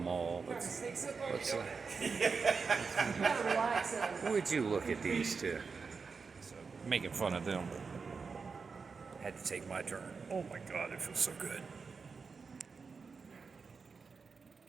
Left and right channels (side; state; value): left; quieter; 5.0 dB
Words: Would you look at these two? Making fun of them. Had to take my turn. Oh my God, it feels so good.